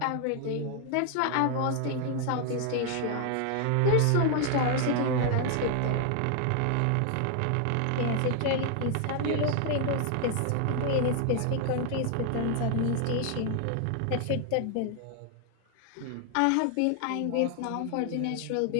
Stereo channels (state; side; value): different; both; correlation 0.00